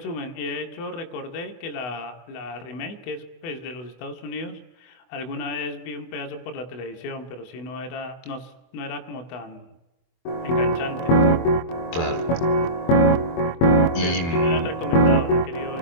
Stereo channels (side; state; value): right; late; 24 ms